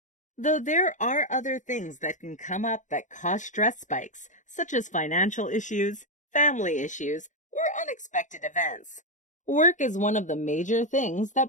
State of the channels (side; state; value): right; late; 0.36 ms